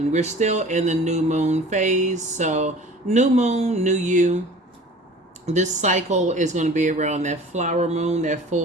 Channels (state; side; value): normal; both; correlation 0.44